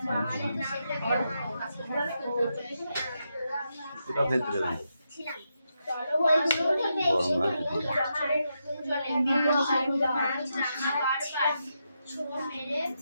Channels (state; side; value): inverted; both; correlation -0.84